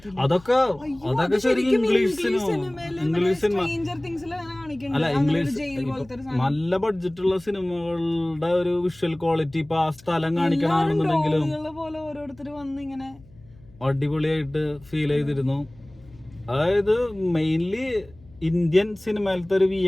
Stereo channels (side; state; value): left; noise; hum, 25 dB below the sound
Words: അതൊക്കെ ശരിക്കും ഇംഗ്ലീഷ് സിനിമ അല്ല, ഇംഗ്ലീഷ് നല്ല ബഡ്ജറ്റുള്ള സിനിമകളുടെ ഒരു വിഷ്വൽ ക്വാളിറ്റി ഇപ്പൊ ആ സ്ഥലം കാണിക്കണമെന്നുണ്ടെങ്കിലും അടിപൊളിയായിട്ട് ഫീൽ ചെയ്തിരുന്നു. അതായത് മെയിൻലി ഇന്ത്യൻ സിനിമയിലത്തെ ഒരു